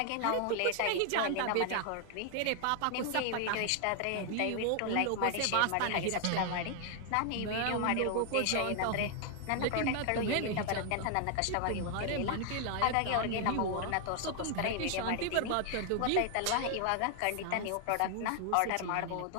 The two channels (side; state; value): both; different; correlation 0.00